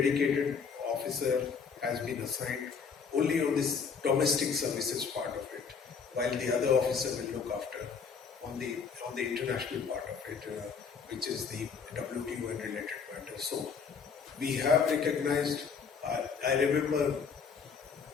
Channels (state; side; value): quieter; right; 5.9 dB